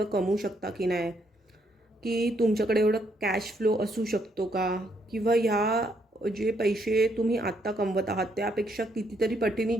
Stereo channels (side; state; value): both; normal; correlation 0.73